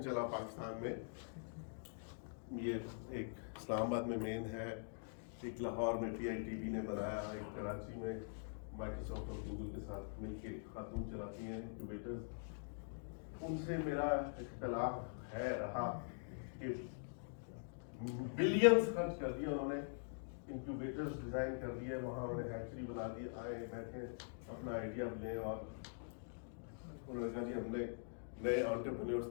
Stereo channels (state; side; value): silent; right; digital silence